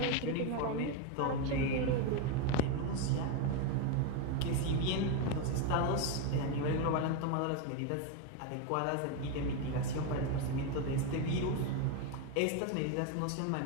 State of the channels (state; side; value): different; both; correlation 0.02